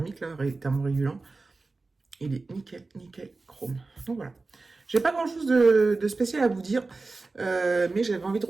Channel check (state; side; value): quieter; left; 3.6 dB